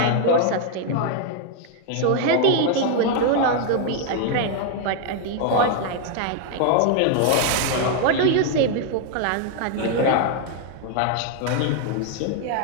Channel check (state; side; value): different; both; correlation 0.00